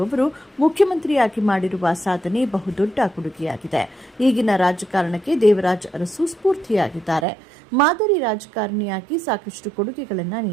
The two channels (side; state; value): left; drops out; at 7.2 s